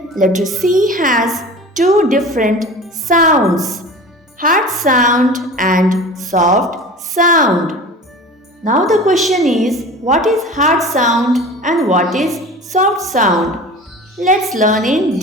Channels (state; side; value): normal; both; correlation 0.37